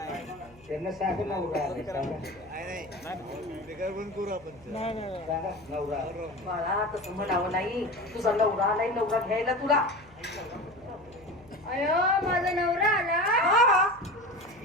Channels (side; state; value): left; noise; hum, 25 dB below the sound